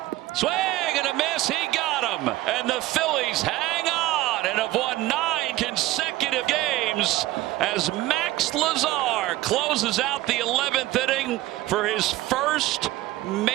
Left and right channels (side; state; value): left; quieter; 17.0 dB